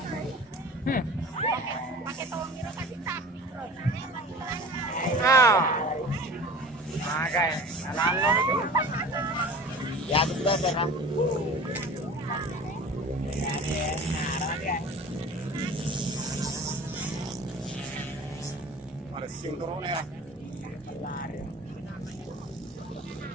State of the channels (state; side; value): normal; both; correlation 0.40